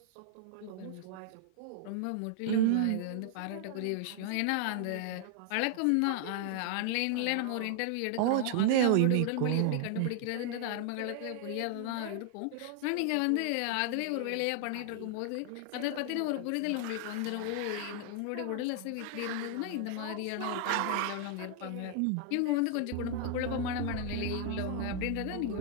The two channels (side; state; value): both; different; correlation 0.00